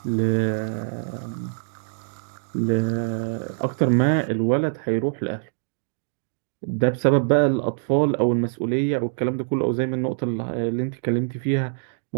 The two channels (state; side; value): silent; left; digital silence